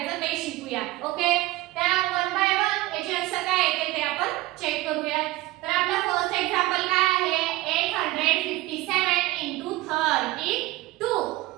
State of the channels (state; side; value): quieter; left; 18.5 dB